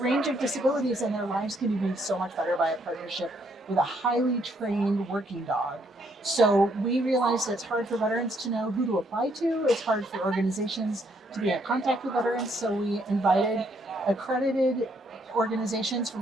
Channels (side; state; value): both; normal; correlation 0.71